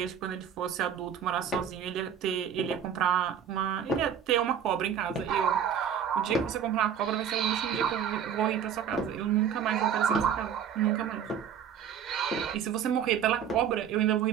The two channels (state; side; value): quieter; left; 8.3 dB